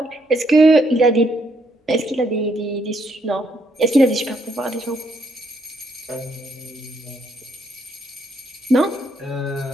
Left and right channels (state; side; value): normal; both; correlation 0.72